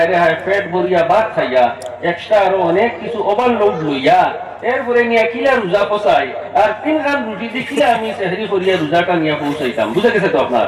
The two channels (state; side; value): identical; both; correlation 1.00